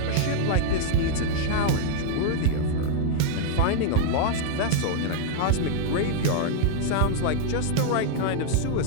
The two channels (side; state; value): both; different; correlation -0.01